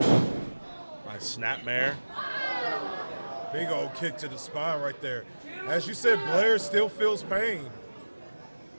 Nice snapmare. Big old kick to the spine right there. As you said, Blair still feels pain.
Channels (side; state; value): both; inverted; correlation -1.00